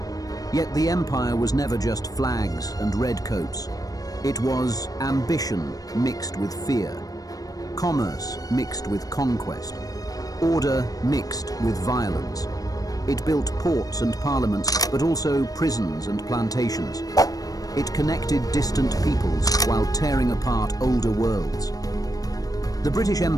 Yet the empire was never just flags and redcoats. It was ambition mixed with fear, commerce mixed with conquest, order mixed with violence. It built ports and parliaments, but also prisons and plantations. It connected distant peoples while tearing apart older worlds. The British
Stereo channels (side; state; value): right; late; 0.18 ms